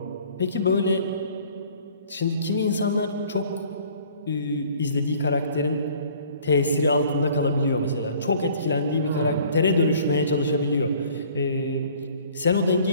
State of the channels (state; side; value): inverted; both; correlation -0.54